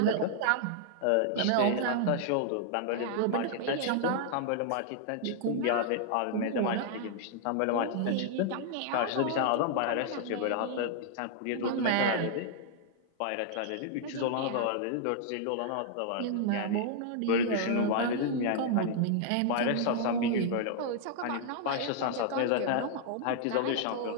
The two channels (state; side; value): different; both; correlation -0.01